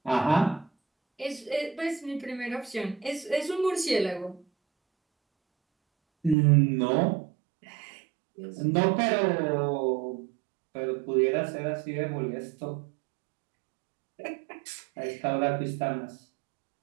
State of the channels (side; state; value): left; drops out; at 6.4 s